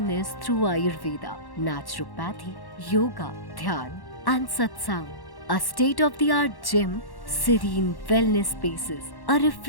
through Ayurveda, naturopathy, yoga, dhyan and satsang. A state-of-the-art gym, serene wellness spaces, a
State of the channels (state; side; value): late; right; 1.1 ms